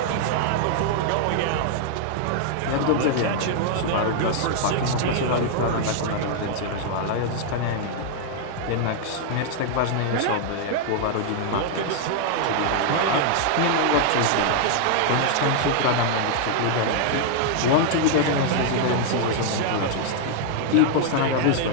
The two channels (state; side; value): different; both; correlation 0.00